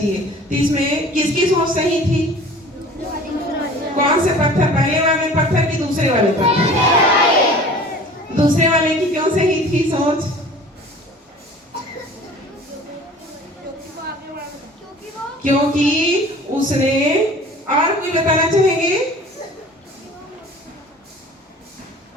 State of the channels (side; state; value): both; normal; correlation 0.45